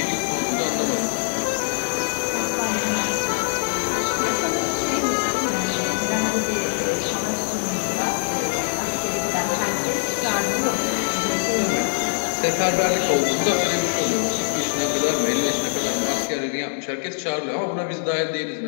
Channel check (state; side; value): silent; right; 63 dB below the other